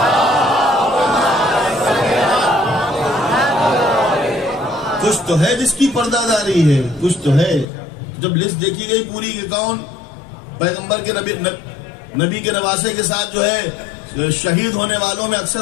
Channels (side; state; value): right; drops out; at 7.7 s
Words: کچھ تو ہے جس کی پردہ داری ہے، کچھ تو ہے. جب لسٹ دیکھی گئی پوری کہ کون پیغمبر کے نبی کے نواسے کے ساتھ جو ہے شہید ہونے والوں میں